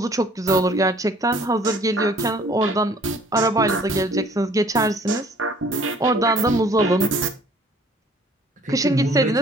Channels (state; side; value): normal; both; correlation 0.55